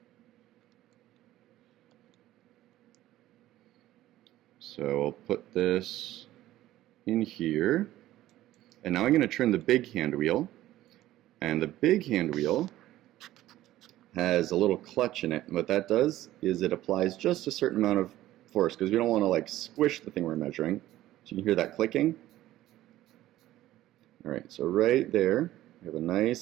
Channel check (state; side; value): quieter; left; 14.8 dB